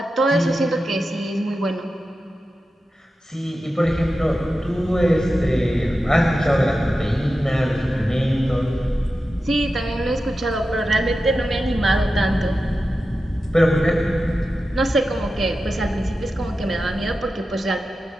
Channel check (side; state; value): both; normal; correlation 0.92